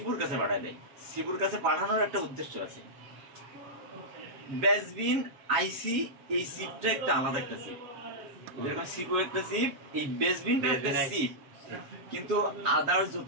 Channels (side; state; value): left; late; 7.2 ms